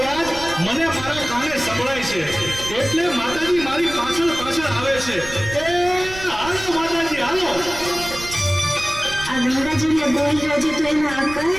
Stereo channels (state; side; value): noise; right; rumble, 13 dB below the sound